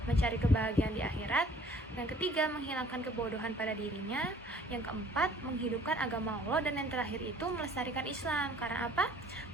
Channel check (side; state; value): both; normal; correlation 0.54